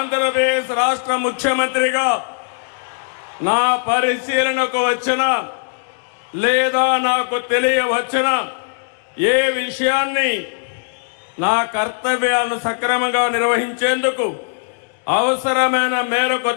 రాష్ట్ర ముఖ్యమంత్రిగా నా పరిశీలనకు వచ్చిన లేదా నాకు తెలియవచ్చిన ఏ విషయాన్ని నా కర్తవ్యాలను సక్రమంగా నిర్వహించేందుకు అవసరమైన మేరకు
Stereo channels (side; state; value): right; silent; digital silence